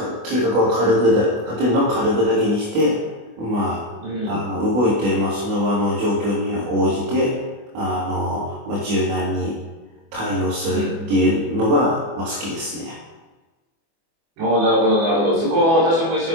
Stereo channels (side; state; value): left; late; 24 ms